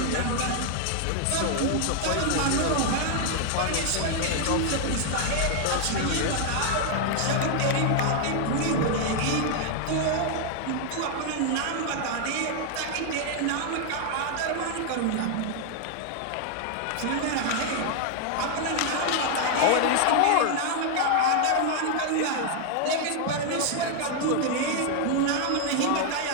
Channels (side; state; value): both; different; correlation 0.00